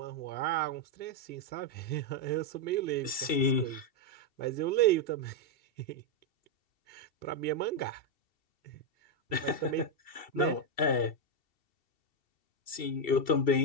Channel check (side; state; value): right; late; 2.7 ms